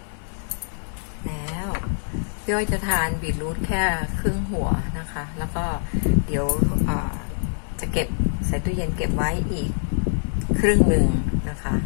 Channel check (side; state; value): right; silent; 62 dB below the other